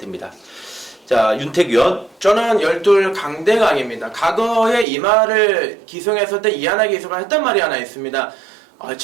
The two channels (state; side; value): drops out; left; at 4.9 s